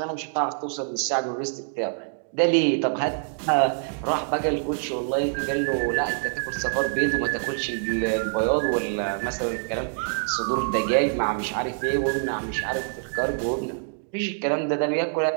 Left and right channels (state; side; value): silent; left; digital silence